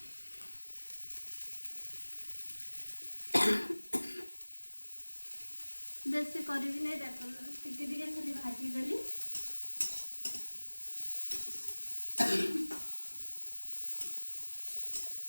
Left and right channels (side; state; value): both; inverted; correlation -1.00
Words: बेसी करी नहीं देख टिके खाली भाजी देली